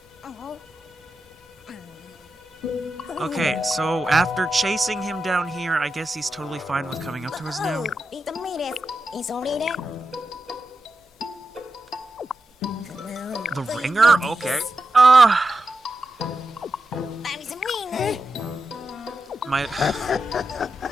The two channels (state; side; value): normal; both; correlation 0.89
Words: Okay, so after chasing him down here, I guess he's totally fine with coming up to us now. The ringer? Okay. My...